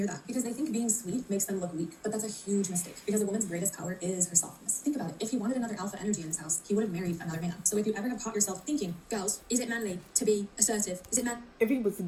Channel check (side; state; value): both; identical; correlation 1.00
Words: that because they think being sweet makes them look weak. But that's a huge mistake because a woman's greatest power is her softness. Think about it. If he wanted another alpha energy in his house, he would have married another man. So if you ever have caught yourself thinking, girls, is it manly to be assertive? Is it man? If he was